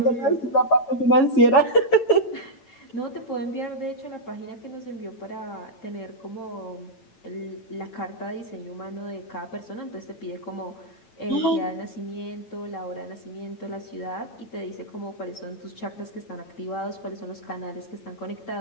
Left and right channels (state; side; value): late; right; 8.9 ms